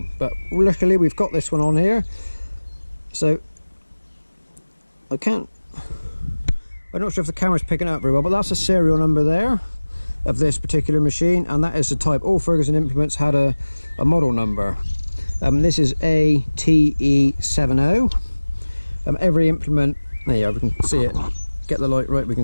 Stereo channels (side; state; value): both; inverted; correlation -1.00